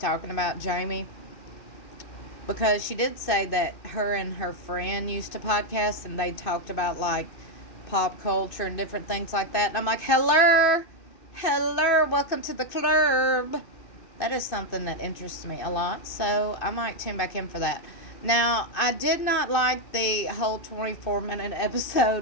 about, Jamie. Because she did say that her and her friend used to podcast and they talked about like pop culture and different things like that. And I'm like, hello, welcome to the club. That is something that interests me a lot. So I might tune back in for that. Now, I did not like the whole 24-minute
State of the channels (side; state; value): right; late; 2.6 ms